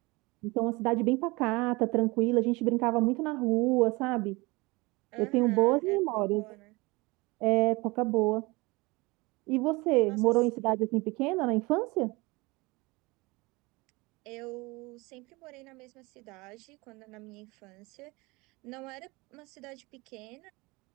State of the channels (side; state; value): left; quieter; 24.1 dB